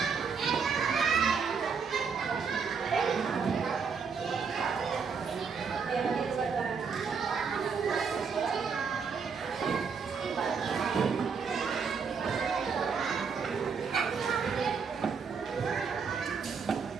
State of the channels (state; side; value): quieter; left; 5.8 dB